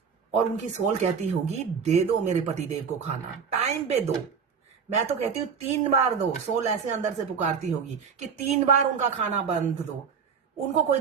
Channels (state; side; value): quieter; left; 6.4 dB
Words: और उनकी सोल कहती होगी दे दो मेरे पतिदेव को खाना, टाइम पे दो। मैं तो कहती हूँ 3 बार दो। सोल ऐसे अंदर से पुकारती होगी कि 3 बार उनका खाना बंद दो, उनको कोई